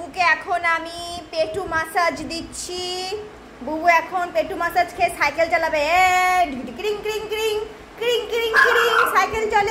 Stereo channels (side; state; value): both; identical; correlation 1.00